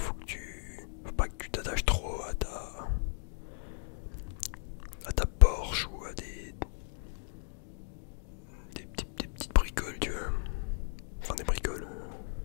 pas que tu t'attaches trop à ta Porsche ou à des petites bricoles, tu vois. Enfin, des bricoles.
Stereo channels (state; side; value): silent; right; 54 dB below the other